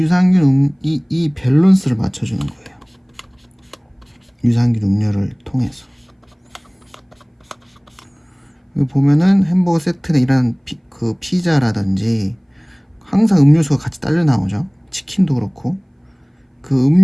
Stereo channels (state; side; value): identical; both; correlation 1.00